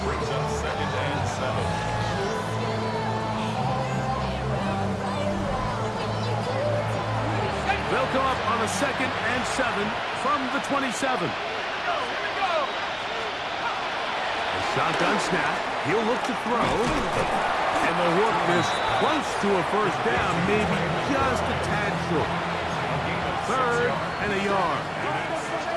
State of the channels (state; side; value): identical; both; correlation 1.00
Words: brings up 2nd and 7. They'll come up on a 2nd and 7 from the 27. A shotgun snap. He'll look to throw. And they'll work this close to a first down, maybe just a tad short. 3rd and a yard.